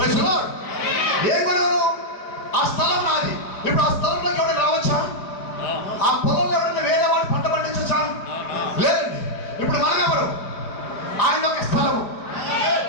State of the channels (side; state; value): right; late; 4.8 ms